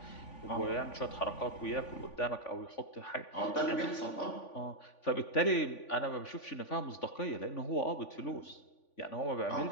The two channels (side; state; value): right; late; 3.5 ms